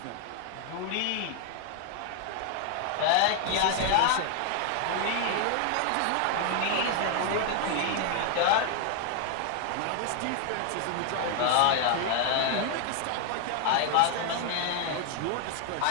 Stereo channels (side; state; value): both; different; correlation 0.00